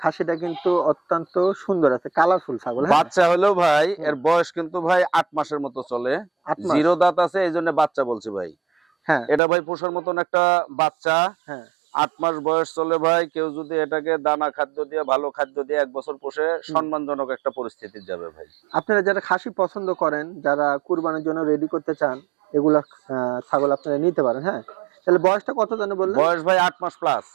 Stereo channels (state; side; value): drops out; left; at 9.4 s